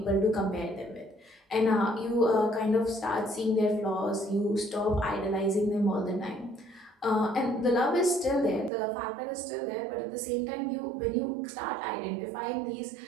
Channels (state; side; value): drops out; left; at 8.7 s